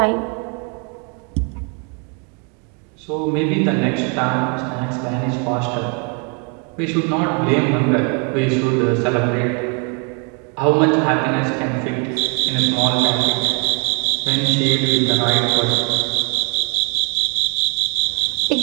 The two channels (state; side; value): quieter; left; 36.1 dB